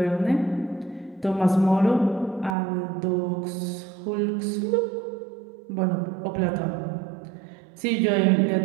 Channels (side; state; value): left; drops out; at 2.6 s